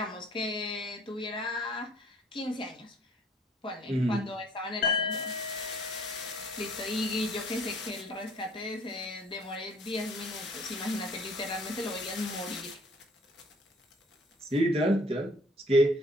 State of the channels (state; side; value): normal; both; correlation 0.56